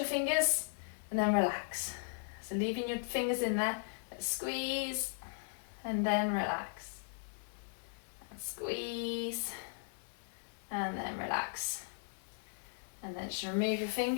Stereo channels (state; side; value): silent; right; digital silence